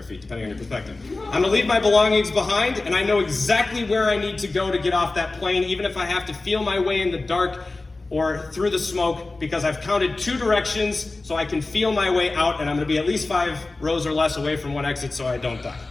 feet, depending on your perspective. I'm gonna leave my belongings behind, and I know exactly where I need to go to get off that plane, even if I have to feel my way in the dark or through the smoke, because I've counted 2 directions so I can feel my way out, and I'm gonna be at least 5 rows or less away from one exit so I don't die.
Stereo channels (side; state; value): right; quieter; 3.3 dB